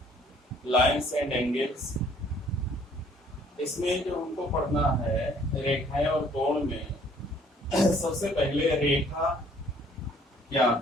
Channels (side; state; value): both; normal; correlation 0.60